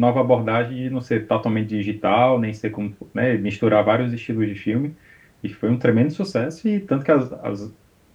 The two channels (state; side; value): identical; both; correlation 1.00